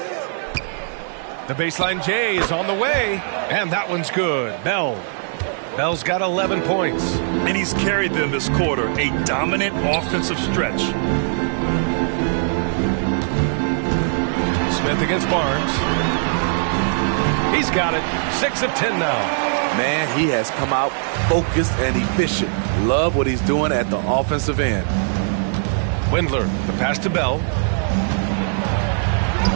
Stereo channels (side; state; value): left; silent; digital silence